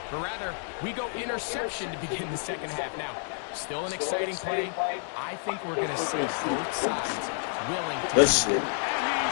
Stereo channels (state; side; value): silent; right; 58 dB below the other